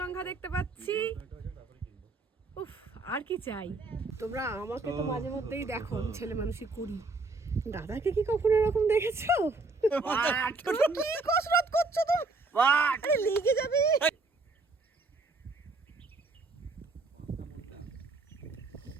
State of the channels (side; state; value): left; quieter; 3.5 dB